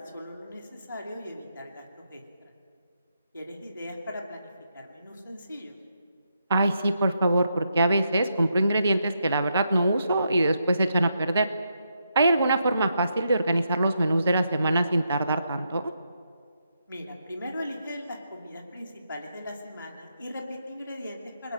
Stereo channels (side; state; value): both; inverted; correlation -0.81